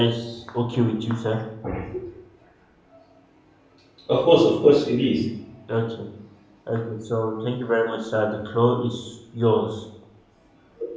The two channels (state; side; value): identical; both; correlation 1.00